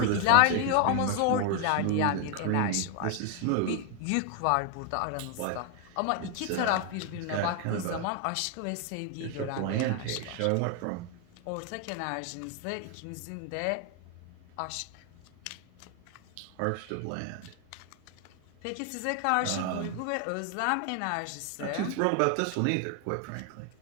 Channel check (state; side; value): different; both; correlation 0.01